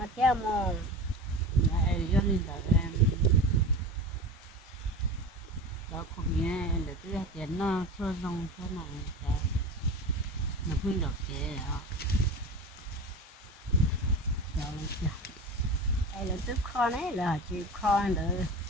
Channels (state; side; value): normal; both; correlation 0.31